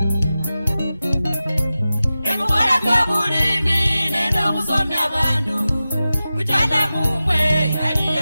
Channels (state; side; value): inverted; both; correlation -0.94